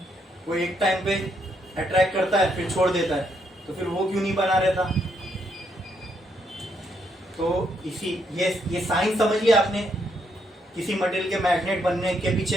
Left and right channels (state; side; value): normal; both; correlation 0.75